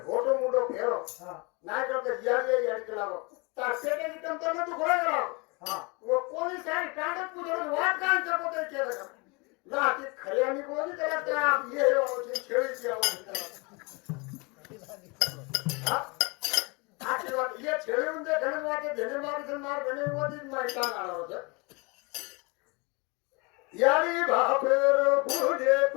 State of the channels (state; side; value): quieter; right; 28.8 dB